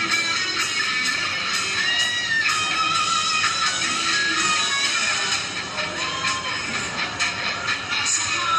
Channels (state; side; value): identical; both; correlation 1.00